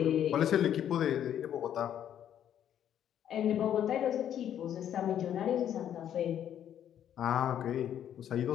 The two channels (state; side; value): quieter; right; 10.1 dB